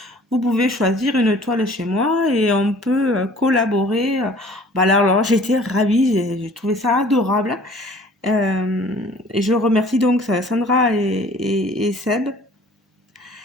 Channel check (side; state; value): both; normal; correlation 0.51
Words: vous pouvez choisir une toile chez moi et on peut collaborer. Bah alors j'étais ravie, j'ai trouvé ça adorable. Et je remercie donc Sandra et Seb.